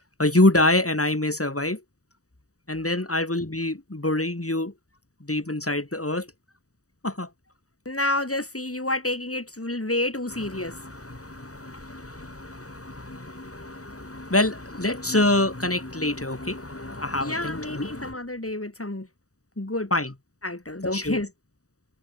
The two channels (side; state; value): right; late; 0.66 ms